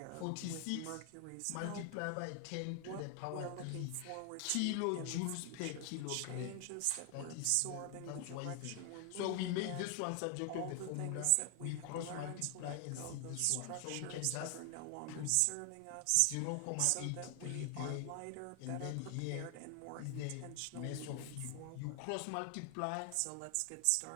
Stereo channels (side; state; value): both; different; correlation 0.00